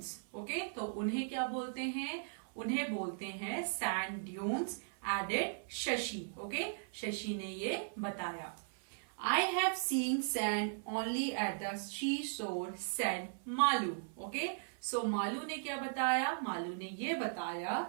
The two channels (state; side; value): silent; left; 53 dB below the other